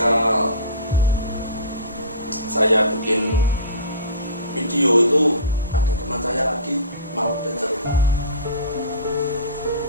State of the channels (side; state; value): both; inverted; correlation -0.37